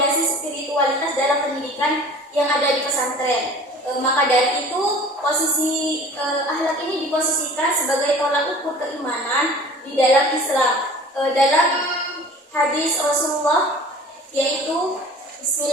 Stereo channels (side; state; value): both; normal; correlation 0.44